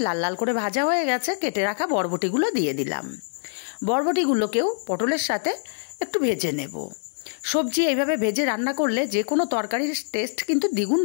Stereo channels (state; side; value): silent; right; digital silence